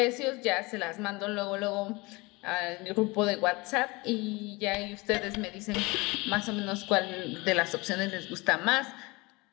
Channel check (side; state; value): right; quieter; 24.6 dB